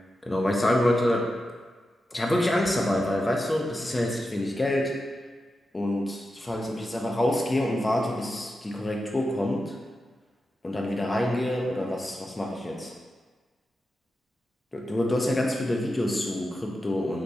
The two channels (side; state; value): both; normal; correlation 0.90